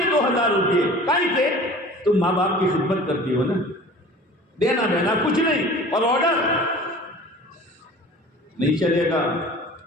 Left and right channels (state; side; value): normal; both; correlation 0.43